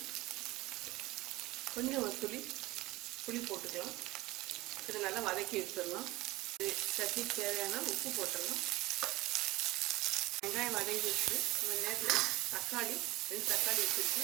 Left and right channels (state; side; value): quieter; left; 19.7 dB